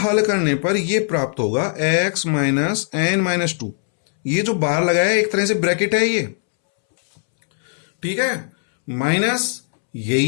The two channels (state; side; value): silent; right; 66 dB below the other